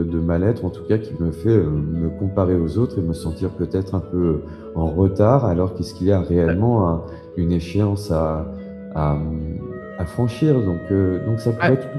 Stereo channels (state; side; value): identical; both; correlation 1.00